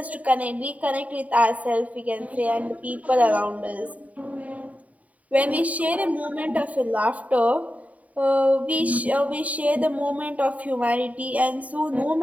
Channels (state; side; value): late; left; 0.070 ms